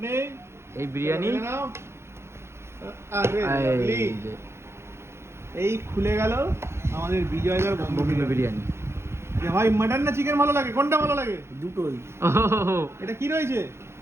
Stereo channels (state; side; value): late; left; 0.13 ms